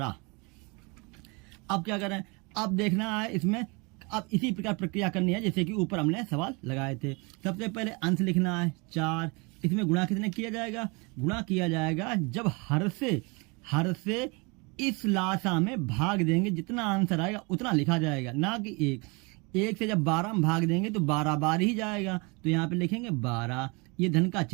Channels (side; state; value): left; quieter; 29.1 dB